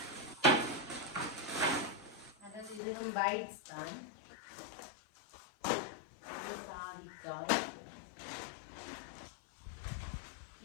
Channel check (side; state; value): right; drops out; at 2.8 s